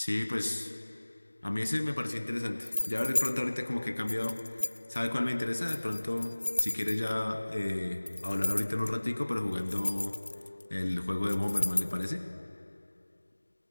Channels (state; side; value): inverted; both; correlation -1.00